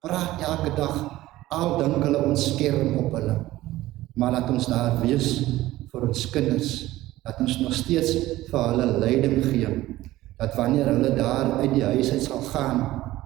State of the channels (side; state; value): left; quieter; 16.4 dB